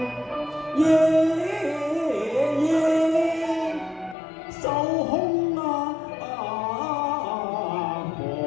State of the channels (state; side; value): drops out; right; at 4.2 s